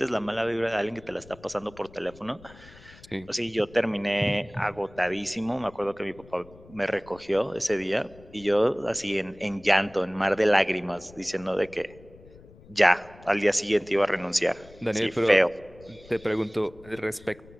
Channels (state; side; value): noise; left; rumble, 22 dB below the sound